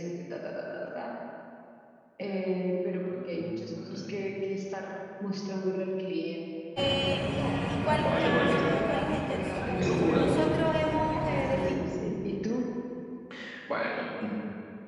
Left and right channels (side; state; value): both; identical; correlation 1.00